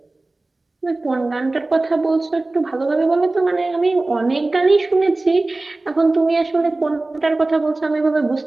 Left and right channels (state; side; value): quieter; left; 3.1 dB